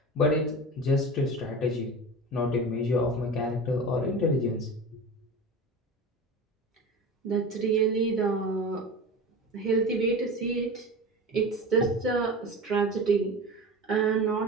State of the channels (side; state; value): both; normal; correlation 0.31